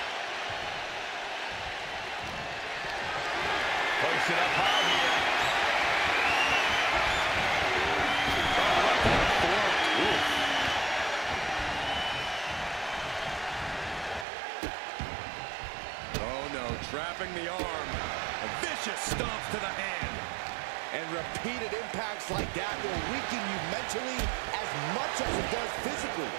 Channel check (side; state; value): left; drops out; at 14.2 s